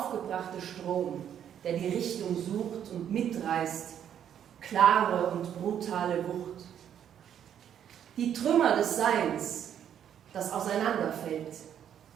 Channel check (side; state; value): left; quieter; 9.4 dB